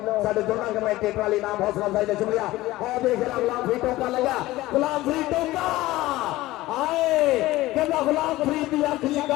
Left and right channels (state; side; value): quieter; right; 17.5 dB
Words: साढ़े दोनों कमेंटेटर वाली नाम हौसला अफजाई का शुक्रिया और देख रहा गुलाम फरीद टोका लगा गुलाम फरीद टोका आए कहना गुलाम फरीद की अख